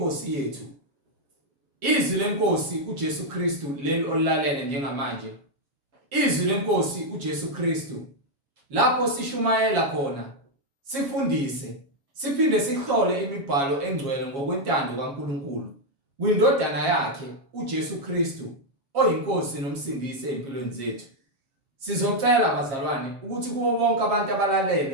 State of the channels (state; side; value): late; left; 7.3 ms